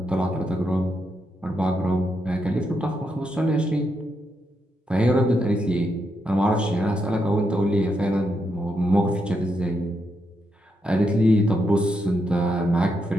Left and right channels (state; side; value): normal; both; correlation 0.81